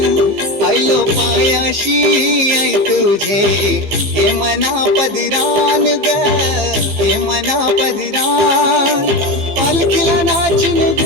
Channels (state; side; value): late; left; 15 ms